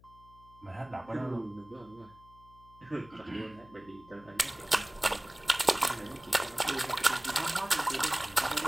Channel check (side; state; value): left; noise; hum, 24 dB below the sound